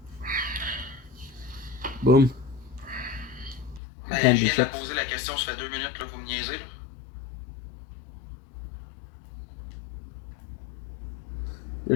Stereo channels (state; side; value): drops out; right; at 3.8 s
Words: Boom. Ben, Candy je viens de la chips. poser la question, ça fait 2 minutes, là, vous me niaisez. Là.